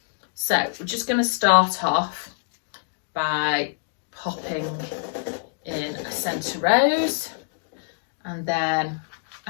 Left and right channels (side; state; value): right; silent; digital silence